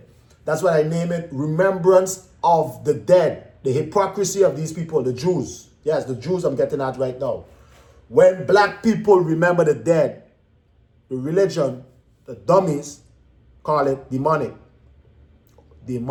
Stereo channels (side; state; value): both; identical; correlation 1.00